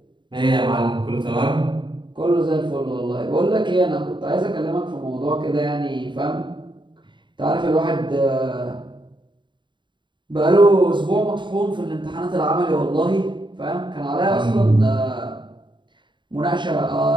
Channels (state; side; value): late; left; 0.23 ms